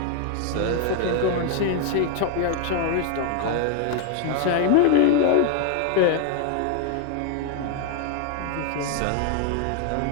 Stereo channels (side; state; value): both; different; correlation 0.00